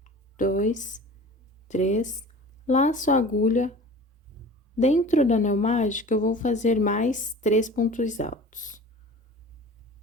2, 3, laço a agulha. Dentro do anel mágico, eu vou fazer mais 3 pontos altos.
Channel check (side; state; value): both; normal; correlation 0.40